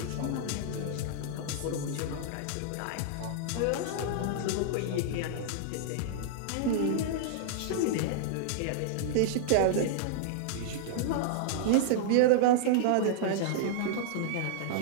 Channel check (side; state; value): both; different; correlation -0.01